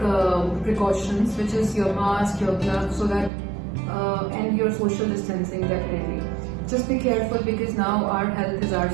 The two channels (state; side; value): drops out; left; at 3.3 s